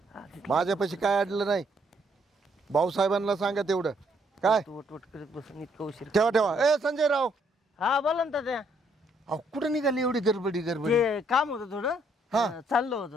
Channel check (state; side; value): normal; both; correlation 0.70